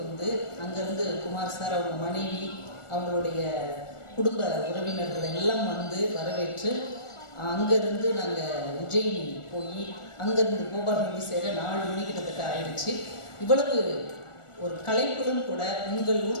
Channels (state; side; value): late; right; 1.4 ms